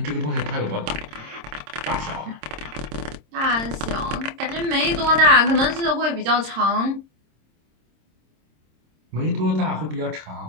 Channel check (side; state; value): left; late; 26 ms